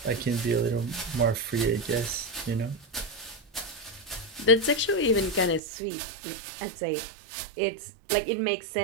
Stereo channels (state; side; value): drops out; left; at 5.6 s